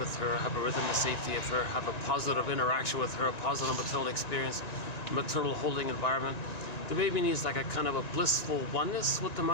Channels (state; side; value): late; right; 1.9 ms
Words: with her, have a rhythm of safety of her, have a positive interaction with her, a positive maternal experience, maternal holding environment. The baby needs like a kind of a blissful oneness with the